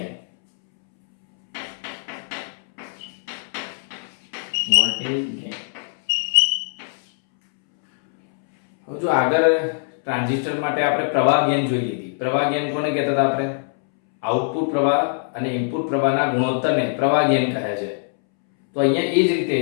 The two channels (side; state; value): right; silent; 64 dB below the other